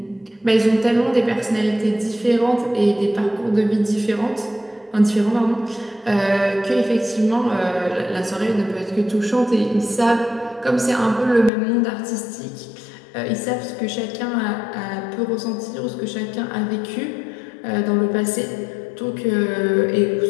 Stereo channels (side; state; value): right; drops out; at 11.5 s